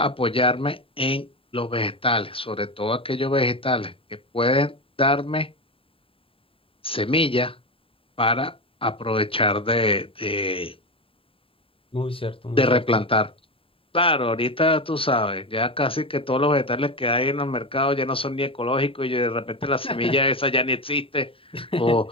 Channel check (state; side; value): late; right; 0.27 ms